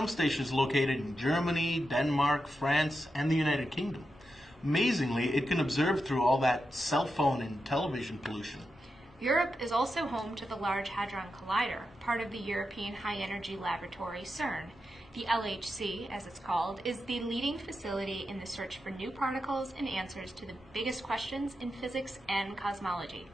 stations located in Germany, Denmark, France, and the United Kingdom. Amazingly, it can observe through all that cell phone and television pollution. Europe is also home to the Large Hadron Collider, part of the European High Energy Laboratory, CERN. The LHC, as it's called, is the leading facility in the search for new particles and answers to the biggest questions in physics and cosmology.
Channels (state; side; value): normal; both; correlation 0.88